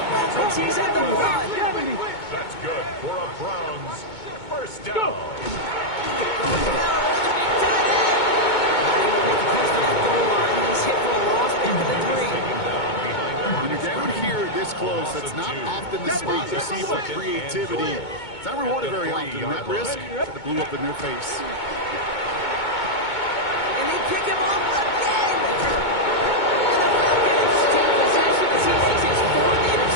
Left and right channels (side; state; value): right; late; 2.2 ms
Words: moments. He's at the 1. That's good for a Browns 1st down. When you're down here this close, that's not often the spot you see for creativity. It's not rewarded very often, and that risk that blew up in their face. And they pick him up again. And the Falcons take possession as he makes his 4th